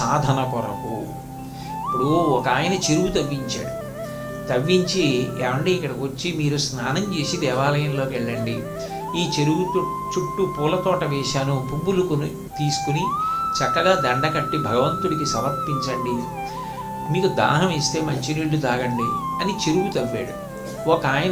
కొరకు. ఇప్పుడు ఒక ఆయన చెరువు తవ్వించాడు. తవ్వించి, ఏమండి ఇక్కడికి వచ్చి మీరు స్నానం చేసి దేవాలయంలోకి వెళ్ళండి, ఈ చెరువు చుట్టూ పూల తోట వేశాను, పువ్వులు తీసుకుని చక్కగా దండ కట్టి భగవంతుడికి సమర్పించండి, మీకు దాహం ఇస్తే మంచినీళ్లు తాగండి అని చెరువు తవ్వాడు. ఒక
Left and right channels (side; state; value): both; identical; correlation 1.00